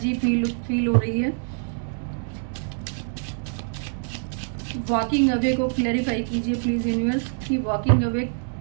फील हो रही है। वॉकिंग अवे को क्लैरिफाई कीजिए प्लीज यूनिवर्स कि वॉकिंग अवे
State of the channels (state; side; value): silent; left; digital silence